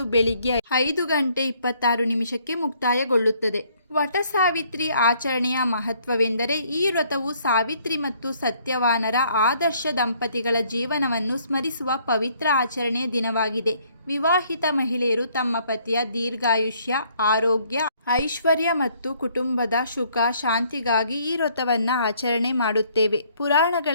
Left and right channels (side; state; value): both; inverted; correlation -0.64